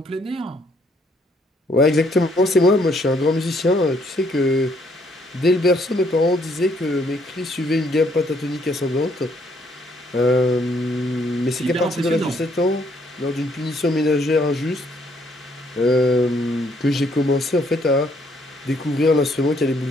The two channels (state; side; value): normal; both; correlation 0.68